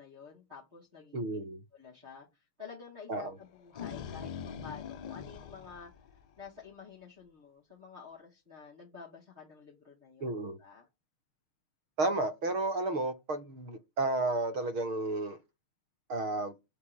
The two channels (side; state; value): left; late; 6.5 ms